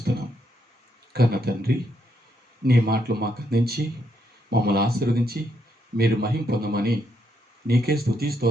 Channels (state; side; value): normal; both; correlation 0.77